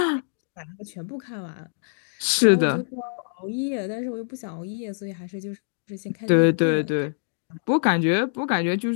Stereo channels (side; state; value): right; silent; digital silence